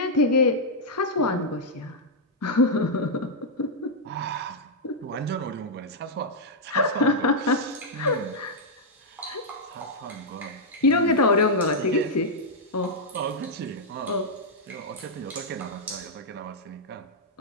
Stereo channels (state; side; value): normal; both; correlation -0.05